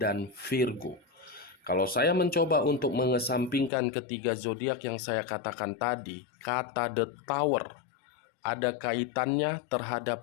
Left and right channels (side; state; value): right; drops out; at 3.7 s